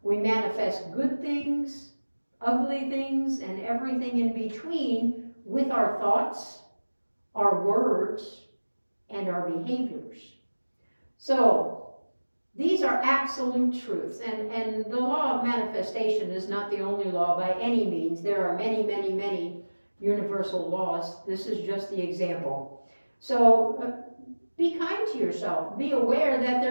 We manifest good things, ugly things, and everything in between with our thoughts, our words, and our behaviors. So, These are absolute truths, and the law of manifestation is not the only law by any means. There are many, many, many universal laws. This is just the example. So be kind to yourself. Be aware that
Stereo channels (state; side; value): inverted; both; correlation -1.00